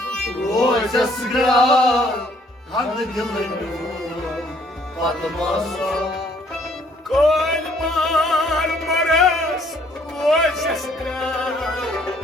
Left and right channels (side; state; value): both; normal; correlation 0.63